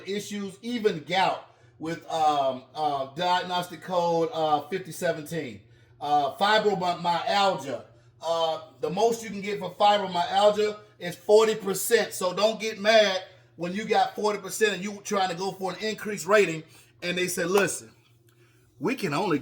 issues, even gout with diagnostic code 5017. Fibromyalgia. The most you can get for fibromyalgia is 40%. So don't get mad when you got 40% and you trying to go for an increased rating and they say, listen, we can only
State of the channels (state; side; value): identical; both; correlation 1.00